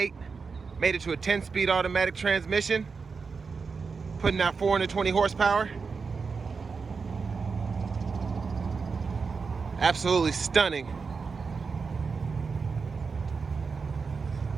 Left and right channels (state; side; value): quieter; left; 5.0 dB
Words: made it to a 10-speed automatic transmission, putting out 420 horsepower. Absolutely stunning.